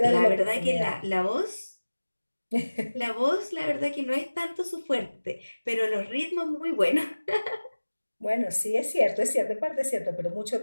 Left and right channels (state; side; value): inverted; both; correlation -1.00